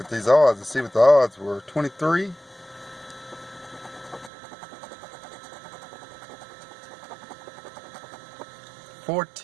at these odds and see what the odds were. 23.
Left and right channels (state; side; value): drops out; left; at 4.3 s